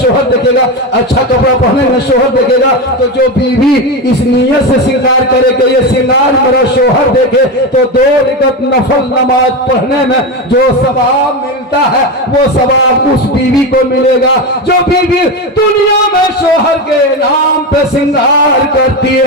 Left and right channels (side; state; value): both; normal; correlation 0.16